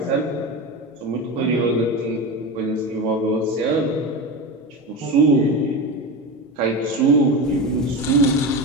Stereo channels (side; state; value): both; normal; correlation 0.22